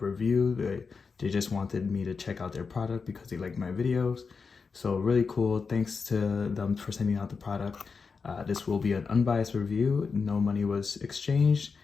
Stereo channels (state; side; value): quieter; right; 5.1 dB